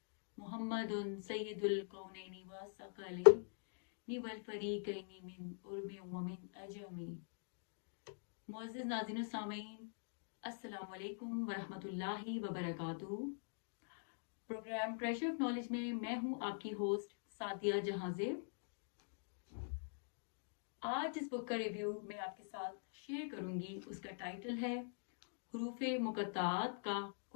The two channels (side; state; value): right; silent; digital silence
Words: محمد سید الکونین والثقلین والفریقین من عرب ومن عجم۔ معزز ناظرین و سامعین، السلام علیکم ورحمۃ اللہ وبرکاتہ۔ پروگرام ٹریجر آف نالج میں میں ہوں آپ کی ہوسٹ سعدیہ جہاں زیب۔ آج اس بک کا ریویو میں آپ کے ساتھ شیئر کروں گی۔ اس کا ٹائٹل ہے حروف مقطعات کا